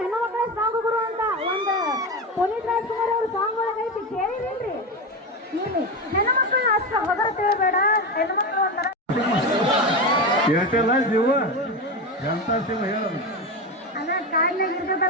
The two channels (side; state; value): both; normal; correlation 0.18